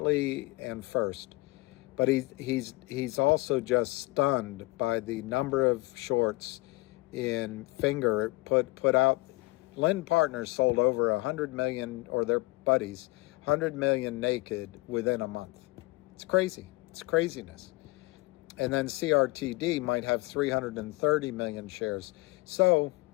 and first. But he's also just stunned by the number of shorts in Finger. Put out. Lynn Partners sold over 100 million, or their buddies, 100 million naked within a month. It's crazy. It's craziness. And then CRTD might have 330 million shares. So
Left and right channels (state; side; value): quieter; right; 22.6 dB